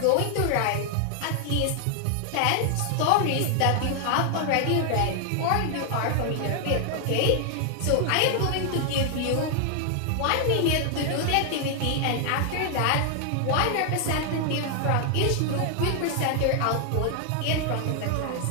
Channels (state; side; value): different; both; correlation 0.00